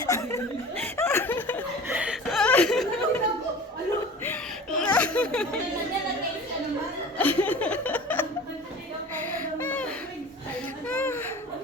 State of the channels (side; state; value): both; normal; correlation 0.39